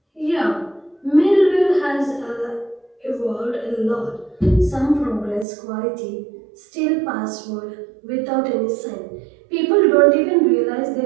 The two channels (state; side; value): drops out; left; at 5.5 s